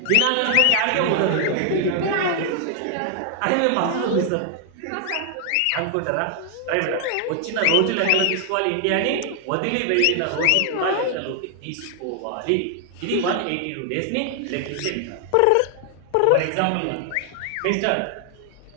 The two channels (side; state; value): both; different; correlation 0.00